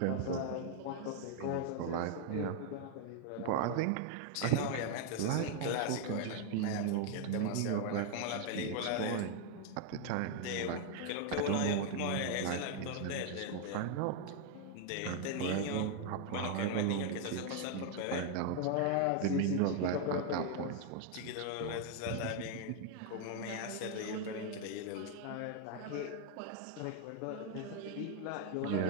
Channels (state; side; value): different; both; correlation 0.00